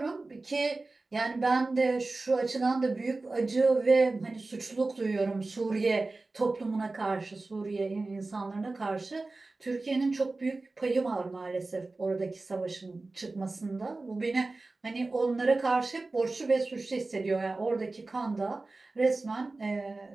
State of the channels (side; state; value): left; quieter; 3.4 dB